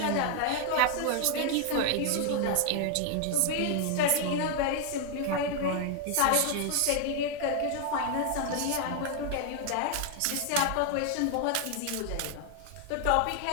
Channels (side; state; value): both; different; correlation 0.00